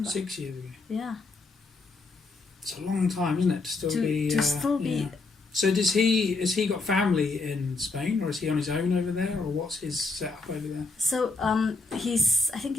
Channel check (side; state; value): right; quieter; 3.7 dB